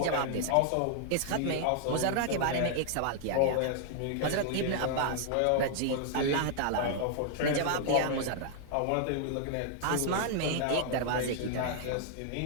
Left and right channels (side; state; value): both; different; correlation -0.01